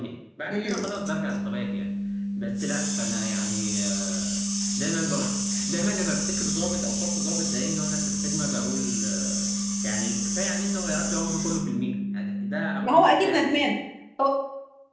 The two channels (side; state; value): both; identical; correlation 1.00